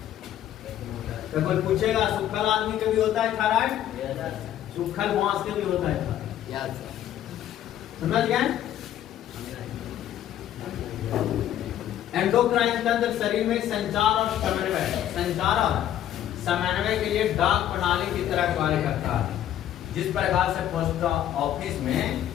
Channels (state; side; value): quieter; right; 11.5 dB